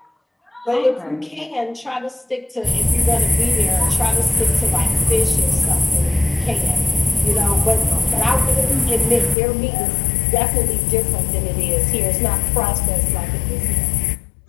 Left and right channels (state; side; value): drops out; right; at 9.3 s